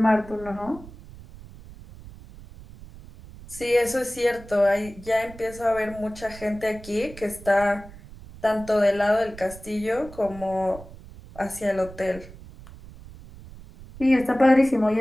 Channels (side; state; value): right; noise; rumble, 17 dB below the sound